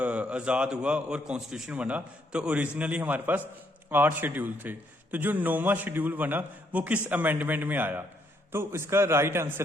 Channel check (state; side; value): normal; both; correlation 0.72